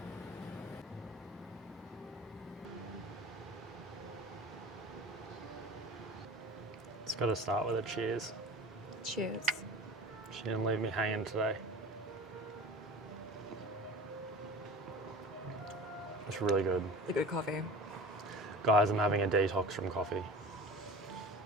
got to start with a cheers. Cheers. She didn't leave me hanging today. It's really good. The good coffee. Guys, I'm having a detox from coffee.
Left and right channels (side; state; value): both; normal; correlation 0.36